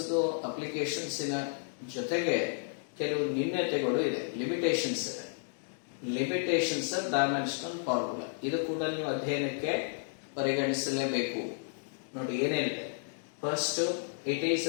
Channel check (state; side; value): silent; right; digital silence